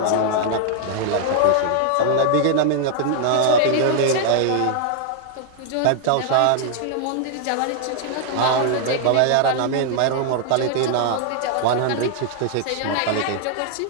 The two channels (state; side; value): different; both; correlation 0.00